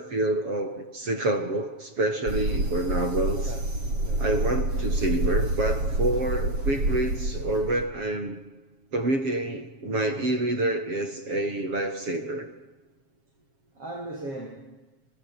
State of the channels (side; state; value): left; late; 7.3 ms